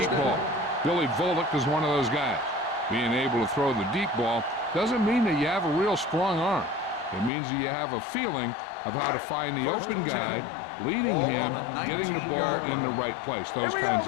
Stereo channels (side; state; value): right; drops out; at 7.3 s